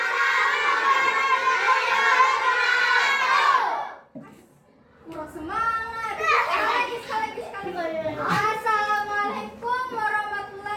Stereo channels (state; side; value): identical; both; correlation 1.00